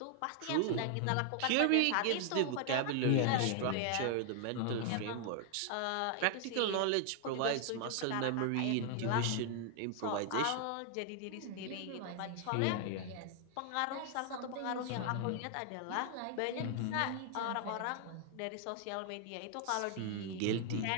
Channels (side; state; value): both; different; correlation 0.00